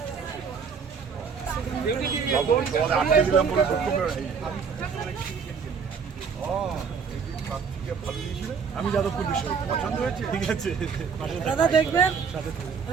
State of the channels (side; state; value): left; quieter; 6.0 dB